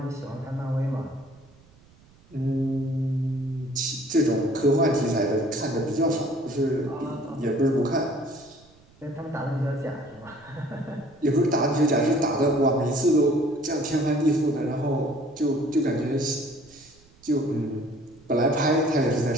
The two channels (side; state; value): right; noise; rumble, 28 dB below the sound